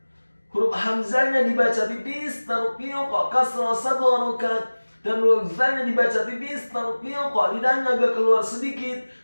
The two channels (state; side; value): inverted; both; correlation -1.00